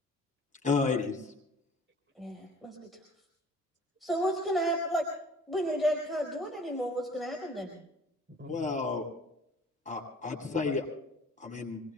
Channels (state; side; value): normal; both; correlation 0.49